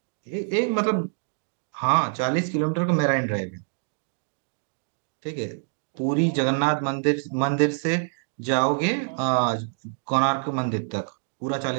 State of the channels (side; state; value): left; silent; digital silence